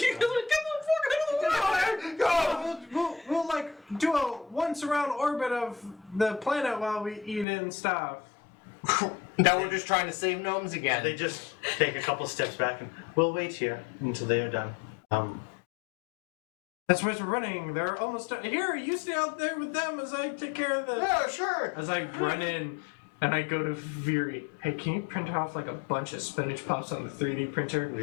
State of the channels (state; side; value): drops out; right; at 7.5 s